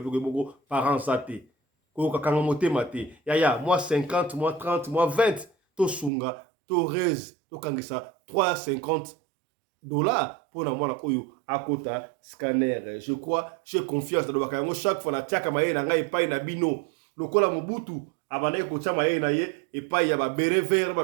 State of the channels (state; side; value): drops out; left; at 6.1 s